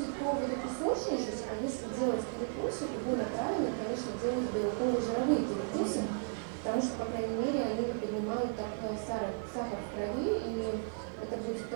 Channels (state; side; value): silent; left; digital silence